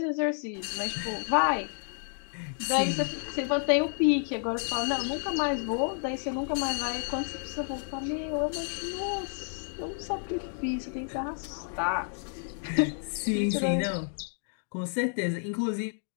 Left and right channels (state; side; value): silent; right; 57 dB below the other